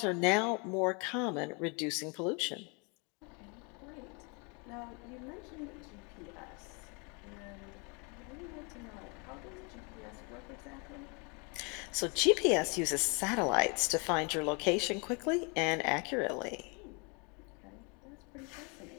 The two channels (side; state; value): right; quieter; 32.7 dB